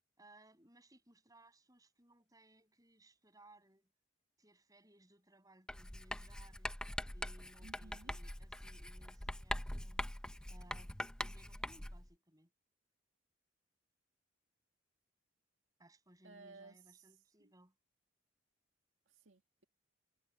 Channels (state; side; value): normal; both; correlation 0.87